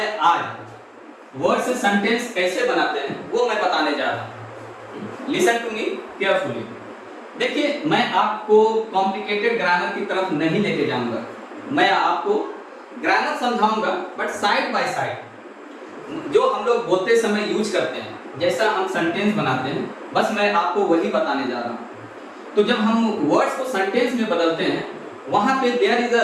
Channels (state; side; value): identical; both; correlation 1.00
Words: आज वर्ड से सेंटेंस कैसे बनाते हैं वो मैं बताने जा रहा हूँ। Listen to me carefully. देखिए, मैं आपको कॉम्प्लिकेटेड ग्रामर की तरफ नहीं लेके जाऊंगा, मैं आपको ग्रामर समझाऊंगा बट साइड बाय साइड जो हम लोग बोलते समय यूज करते हैं, जैसा हम सेंटेंस बनाते हैं, बस मैं आपको वही बताने जा रहा हूँ। तो जब हम वर्ड्स को सेंटेंस में बदलते हैं, वहां पे there is a